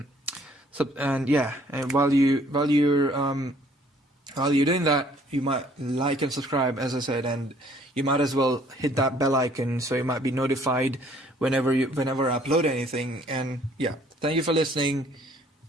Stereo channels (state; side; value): normal; both; correlation 0.60